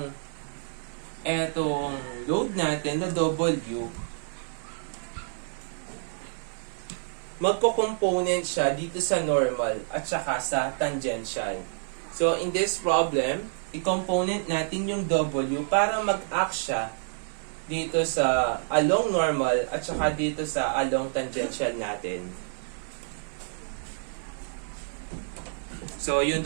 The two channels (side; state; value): left; silent; digital silence